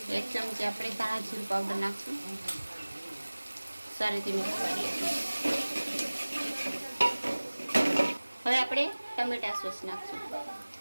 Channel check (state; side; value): inverted; both; correlation -1.00